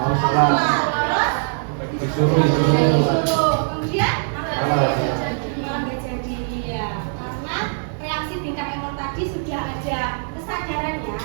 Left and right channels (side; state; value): left; silent; digital silence